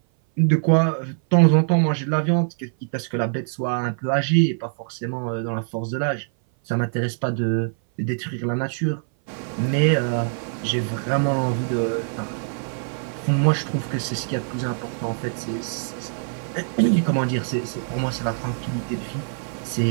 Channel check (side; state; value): left; silent; 57 dB below the other